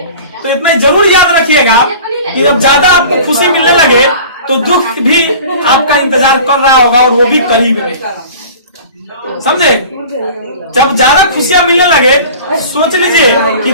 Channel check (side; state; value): both; inverted; correlation -0.41